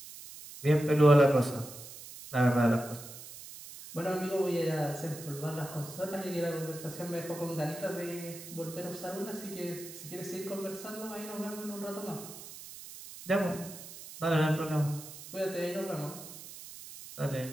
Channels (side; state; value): right; noise; hiss, 14 dB below the sound